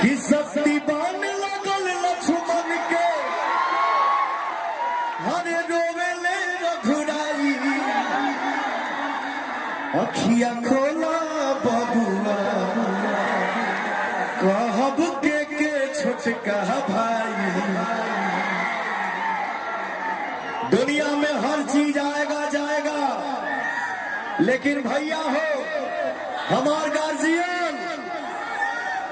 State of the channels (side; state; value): both; identical; correlation 1.00